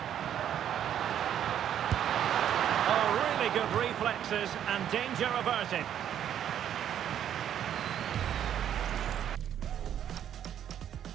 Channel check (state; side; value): quieter; left; 10.0 dB